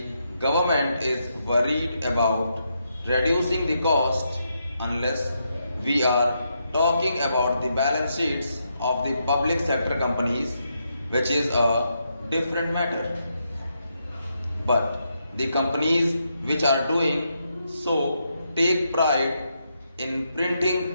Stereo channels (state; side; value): inverted; both; correlation -0.81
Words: government is worried about reducing the cost unless we are talking about the balance sheets of the public sector companies, which is a different matter. But the companies which are doing so take pride in